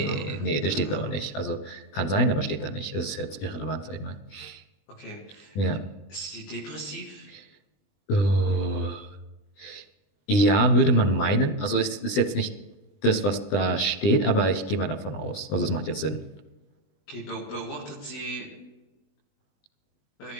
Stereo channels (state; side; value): late; right; 20 ms